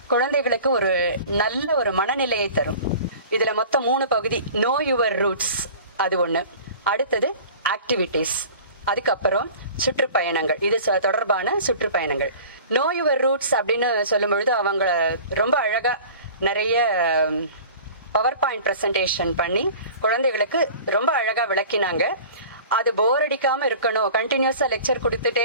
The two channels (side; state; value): both; inverted; correlation -0.42